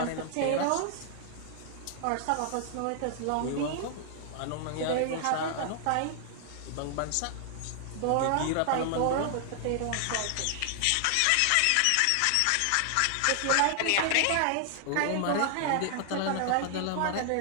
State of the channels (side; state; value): both; different; correlation 0.00